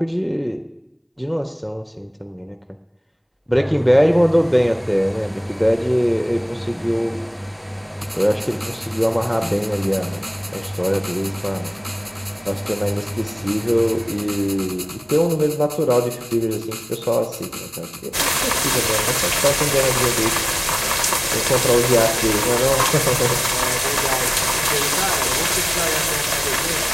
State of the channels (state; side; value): identical; both; correlation 1.00